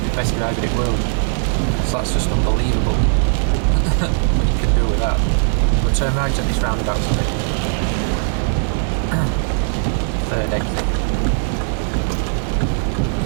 best driver in the world. Because that's just unbelievable what you can do with that. We'll turn right at this roundabout, sorry. Third exit.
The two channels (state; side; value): silent; left; digital silence